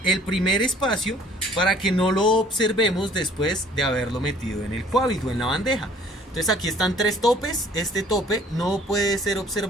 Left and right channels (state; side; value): normal; both; correlation 0.56